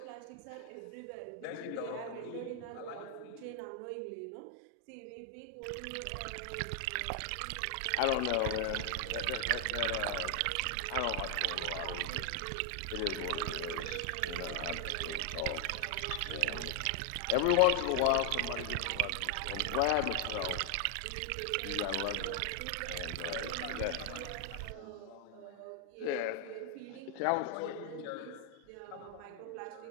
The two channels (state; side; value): different; both; correlation 0.00